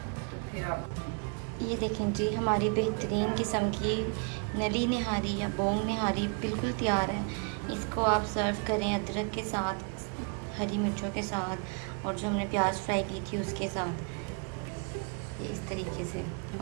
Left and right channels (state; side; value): quieter; left; 38.2 dB